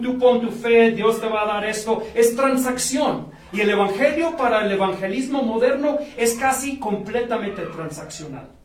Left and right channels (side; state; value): both; identical; correlation 1.00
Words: pon tu fe, Dios te va a dar esto. Es transacción. Y el Evangelio para el evangelismo moderno es casi completamente transaccional.